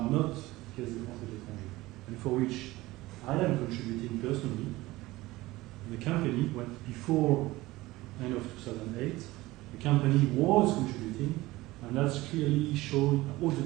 not Caisse des Français de l'Étranger, and for which I am contributing personally. And the company, before end of 2008, the company was contributing, and that's clearly shown, all the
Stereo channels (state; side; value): quieter; left; 19.0 dB